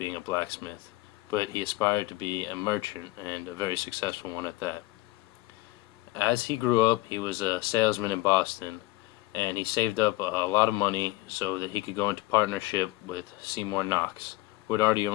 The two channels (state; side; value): quieter; right; 19.2 dB